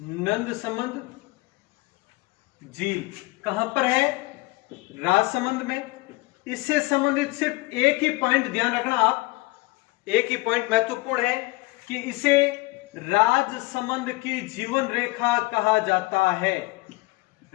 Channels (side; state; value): right; quieter; 22.9 dB